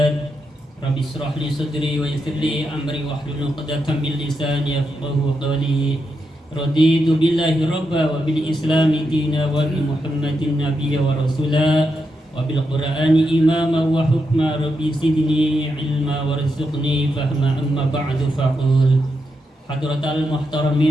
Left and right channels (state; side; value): normal; both; correlation 0.84